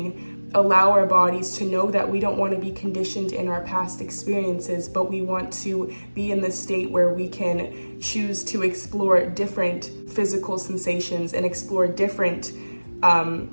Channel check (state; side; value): inverted; both; correlation -1.00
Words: allow our bodies to know that we don't want to be conditioned in our past experiences, but we want to be in the state where we can choose to explore different physical sensations and explore different